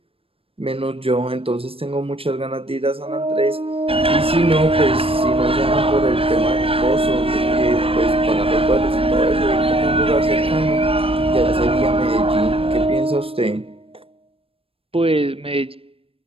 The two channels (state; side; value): late; left; 0.27 ms